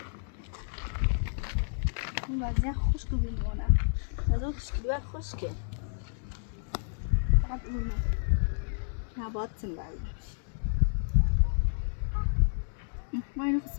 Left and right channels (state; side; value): silent; right; digital silence